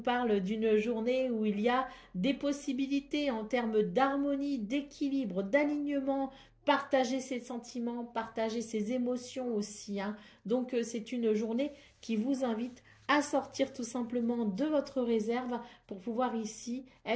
d'une journée où il y a des possibilités en termes d'harmonie, d'équilibre, d'alignement, partager ses sentiments, partager ses émotions aussi, hein. Donc, c'est une journée qui vous invite à sortir tout simplement de votre réserve pour pouvoir ici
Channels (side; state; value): both; identical; correlation 1.00